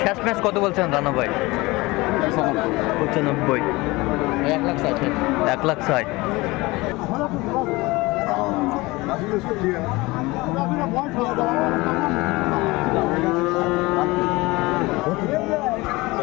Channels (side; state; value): right; quieter; 22.1 dB